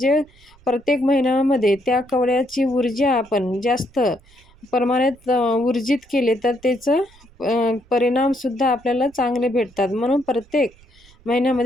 प्रत्येक महिन्यामध्ये त्या कवड्याची ऊर्जा आपण जास्त प्रमाणात ऊर्जित केले तर त्याचं परिणामसुद्धा आपल्याला चांगले भेटतात. म्हणून प्रत्येक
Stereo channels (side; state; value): right; noise; rumble, 28 dB below the sound